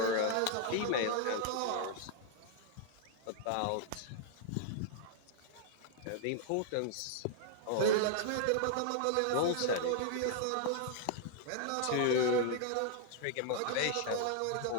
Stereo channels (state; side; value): different; both; correlation -0.01